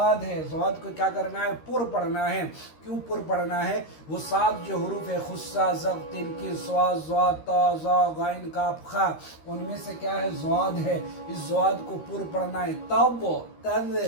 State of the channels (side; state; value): right; late; 13 ms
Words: है, ज़वाद को क्या करना है, पुर पढ़ना है। क्यों पुर पढ़ना है, वो 7 जो हरूफ है, खुस्सा ज़ब तिनकी स्वाद ज़वाद ता ज़ा गाइन काफ खा, उनमें से क्या है, ज़वाद है। इस ज़वाद को पुर पढ़ना है। तब तब